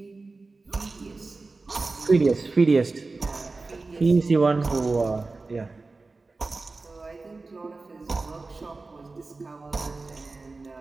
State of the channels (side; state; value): left; quieter; 3.6 dB